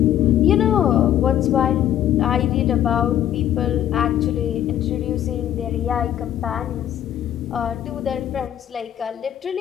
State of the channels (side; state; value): right; quieter; 11.3 dB